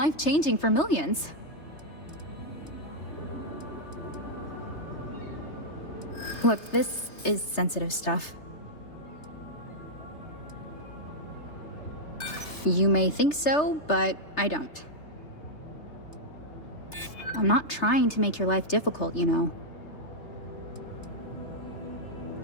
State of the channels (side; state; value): right; late; 3.3 ms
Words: for millions. Look, this is sensitive stuff. You may think so, but I don't. I'm not trying to make your life difficult, you know.